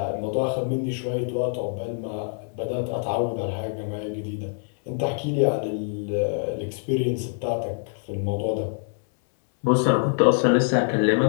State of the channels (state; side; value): silent; right; 59 dB below the other